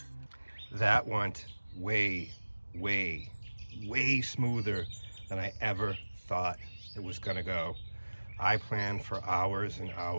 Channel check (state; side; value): inverted; both; correlation -1.00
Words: That went way, way, way smoother than I ever thought it was gonna go. I planned for hours and